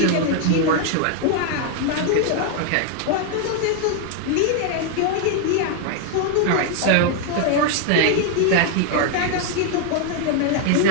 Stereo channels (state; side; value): different; both; correlation 0.00